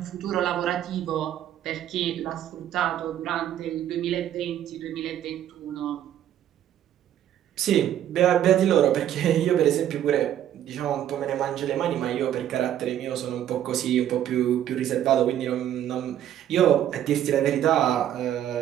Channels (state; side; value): quieter; left; 11.1 dB